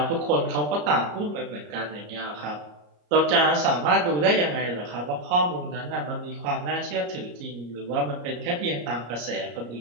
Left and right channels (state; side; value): late; left; 34 ms